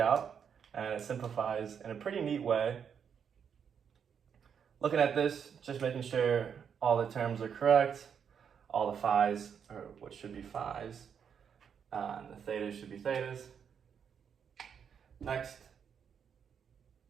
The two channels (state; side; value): quieter; left; 7.4 dB